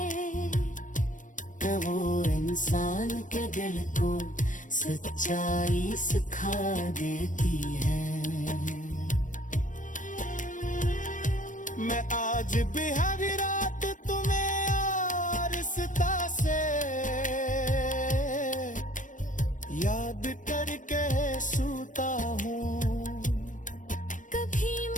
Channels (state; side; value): late; right; 0.37 ms